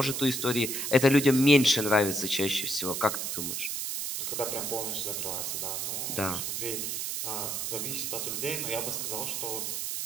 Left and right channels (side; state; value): right; noise; hiss, 2 dB below the sound